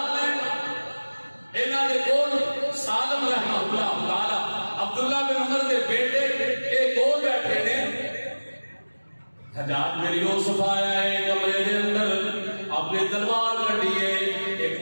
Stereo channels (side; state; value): both; inverted; correlation -1.00